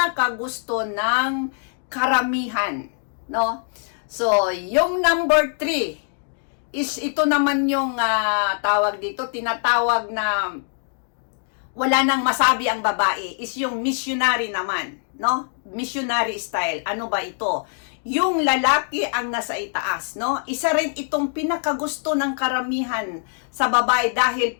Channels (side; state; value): right; silent; digital silence